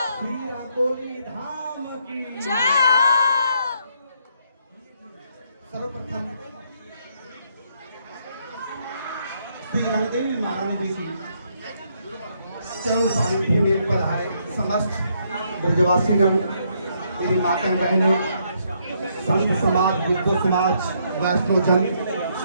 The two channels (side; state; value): both; inverted; correlation -0.73